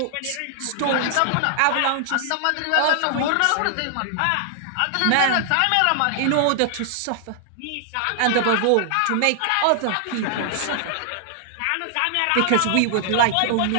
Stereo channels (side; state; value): both; different; correlation 0.00